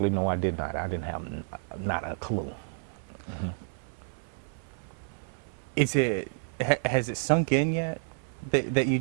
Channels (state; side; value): silent; left; 56 dB below the other